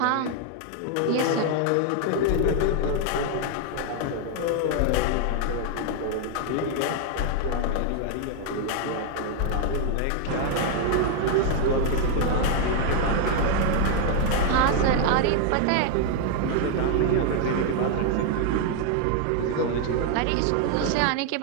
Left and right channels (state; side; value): different; both; correlation 0.01